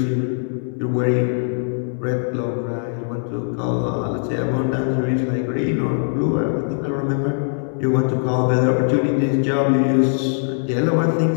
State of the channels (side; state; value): right; silent; digital silence